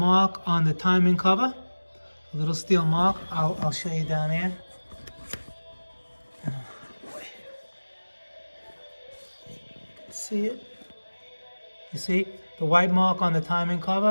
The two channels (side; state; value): both; inverted; correlation -1.00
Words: on the timing cover, a little steel mark. I'll show you down here. See it? You see the white mark on the timing